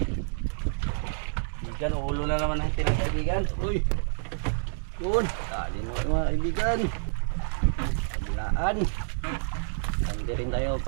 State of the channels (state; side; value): silent; left; digital silence